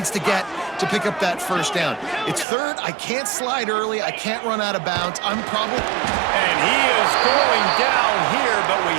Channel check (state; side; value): drops out; left; at 2.5 s